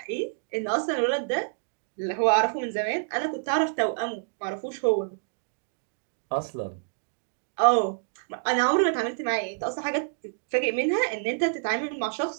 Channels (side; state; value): left; silent; digital silence